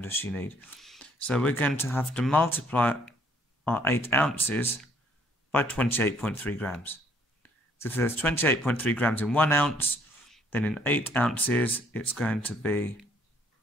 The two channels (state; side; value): normal; both; correlation 0.63